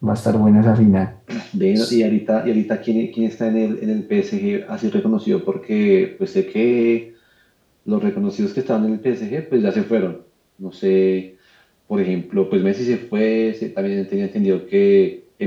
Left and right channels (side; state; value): both; identical; correlation 1.00